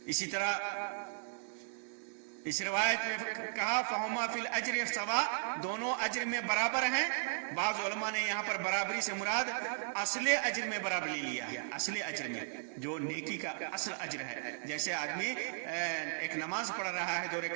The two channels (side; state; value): left; silent; digital silence